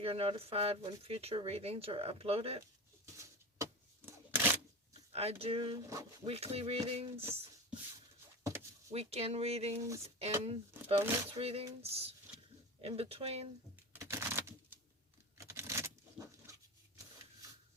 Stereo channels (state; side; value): normal; both; correlation 0.28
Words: notified when future readings are uploaded. I do weekly readings, weekend readings, and bonus readings in between.